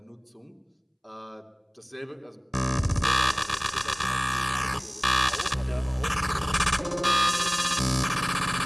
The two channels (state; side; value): identical; both; correlation 1.00